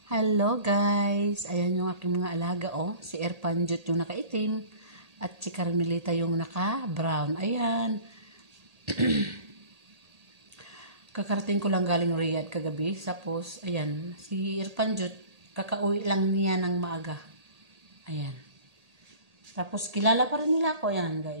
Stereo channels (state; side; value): late; left; 1.8 ms